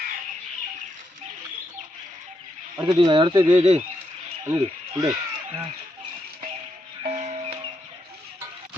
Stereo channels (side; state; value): both; normal; correlation 0.80